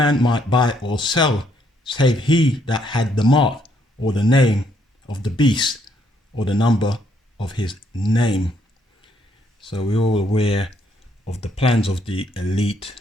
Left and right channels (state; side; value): normal; both; correlation 0.71